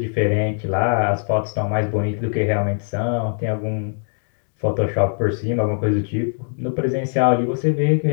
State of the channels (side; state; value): right; silent; 59 dB below the other